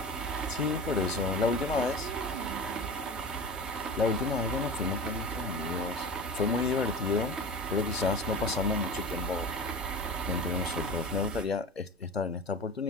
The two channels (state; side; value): normal; both; correlation 0.32